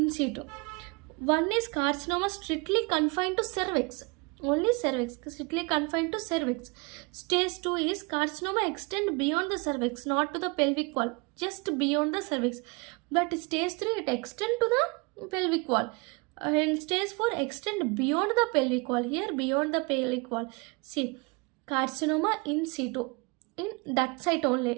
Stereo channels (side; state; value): left; quieter; 29.5 dB